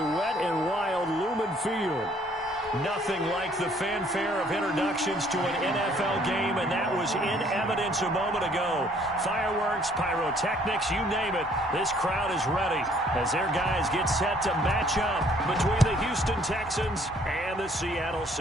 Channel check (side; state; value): both; normal; correlation 0.61